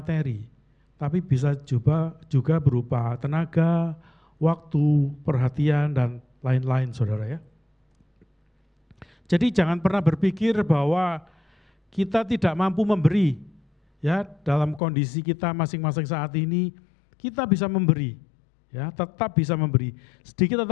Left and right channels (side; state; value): right; drops out; at 14.8 s